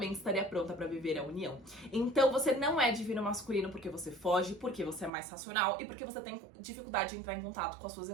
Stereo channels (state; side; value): drops out; left; at 5.1 s